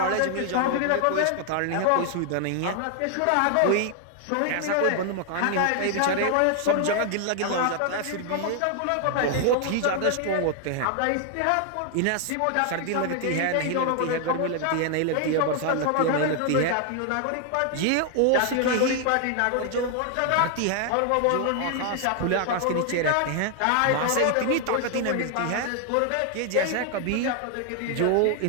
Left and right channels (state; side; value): different; both; correlation 0.00